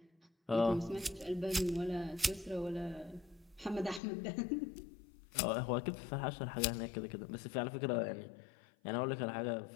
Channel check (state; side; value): drops out; right; at 4.0 s